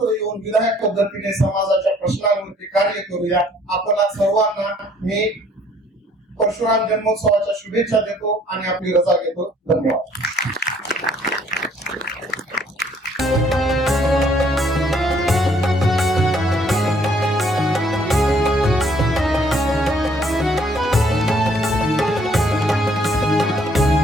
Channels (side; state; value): both; normal; correlation 0.62